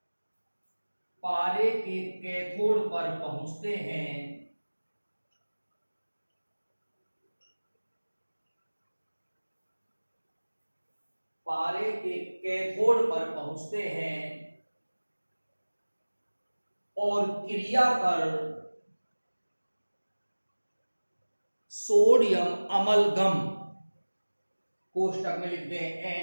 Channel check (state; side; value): inverted; both; correlation -1.00